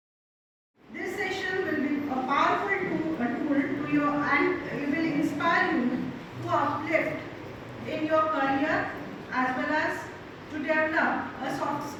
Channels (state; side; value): identical; both; correlation 1.00